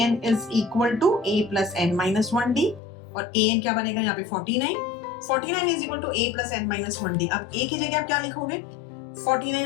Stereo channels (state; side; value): drops out; right; at 2.8 s